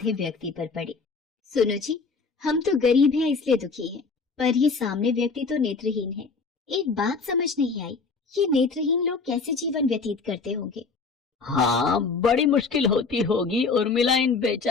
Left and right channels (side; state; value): right; quieter; 4.5 dB